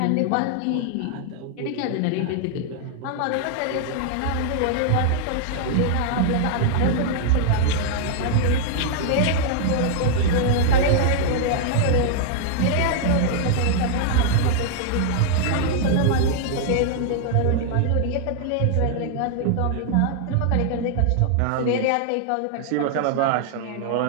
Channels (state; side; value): different; both; correlation -0.01